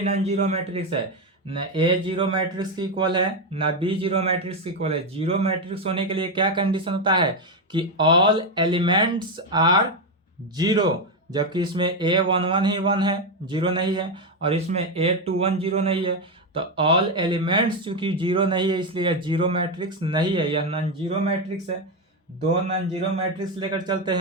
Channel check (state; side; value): normal; both; correlation 0.08